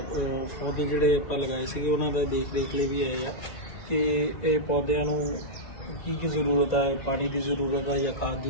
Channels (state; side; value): late; right; 2.2 ms